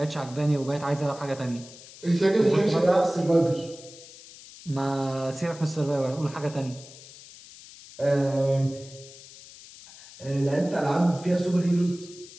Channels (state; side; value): noise; left; hiss, 19 dB below the sound